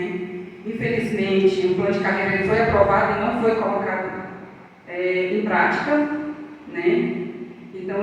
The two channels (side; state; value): both; identical; correlation 1.00